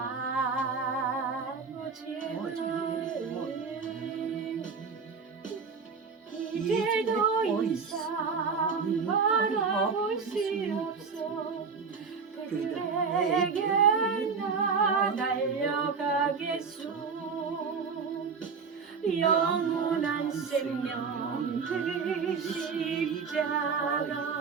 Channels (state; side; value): quieter; left; 5.4 dB